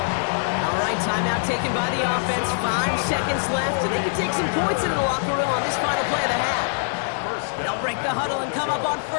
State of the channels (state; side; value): silent; right; 63 dB below the other